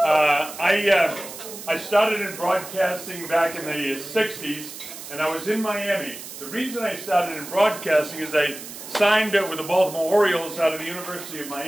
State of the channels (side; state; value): right; noise; hiss, 12 dB below the sound